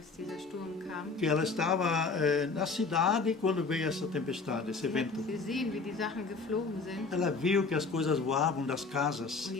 dieser Sturm kam. que ela estava na cidade quando veio essa tempestade, esse Sie hat vento. gesehen, wie die Sachen geflogen sind Ela viu que as coisas voavam das casas, und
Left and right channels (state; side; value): quieter; right; 4.2 dB